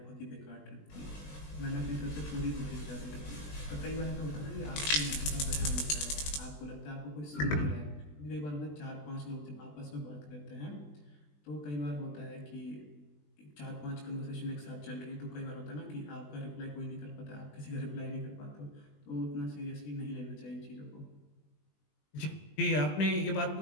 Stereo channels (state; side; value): late; right; 20 ms